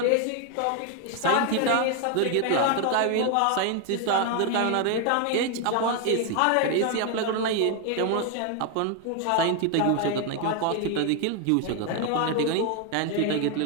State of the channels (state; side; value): different; both; correlation 0.01